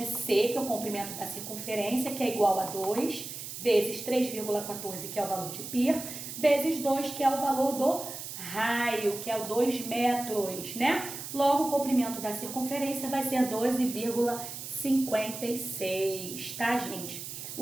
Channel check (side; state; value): right; noise; hiss, 9 dB below the sound